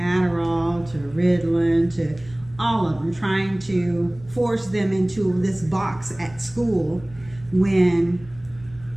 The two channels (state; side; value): noise; left; rumble, 22 dB below the sound